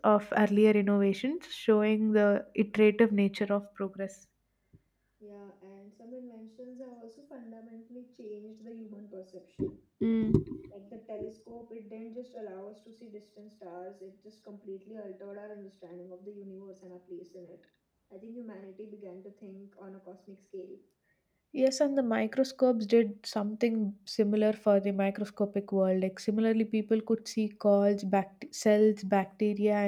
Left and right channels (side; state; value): both; identical; correlation 1.00